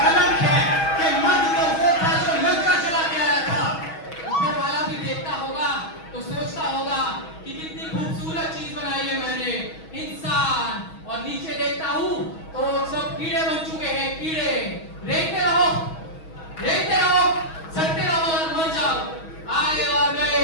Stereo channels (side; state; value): right; late; 6.2 ms